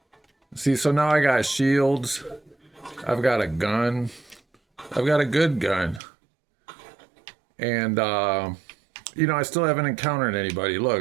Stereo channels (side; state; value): left; drops out; at 6.0 s